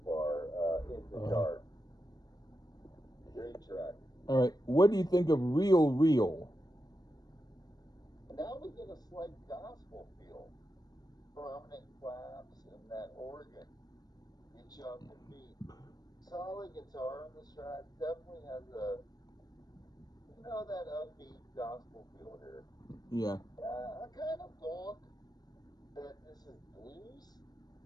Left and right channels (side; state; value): right; late; 0.19 ms